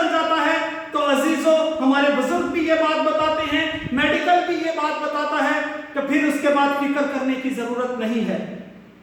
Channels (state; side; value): identical; both; correlation 1.00